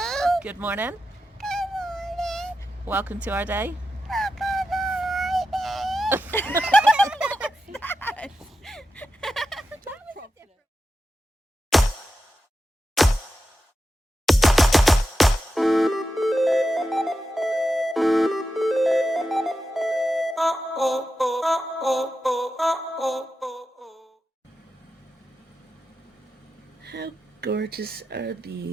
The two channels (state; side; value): normal; both; correlation 0.89